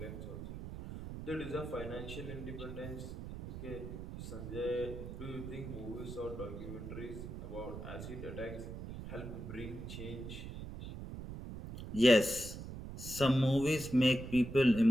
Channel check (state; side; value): noise; right; rumble, 9 dB below the sound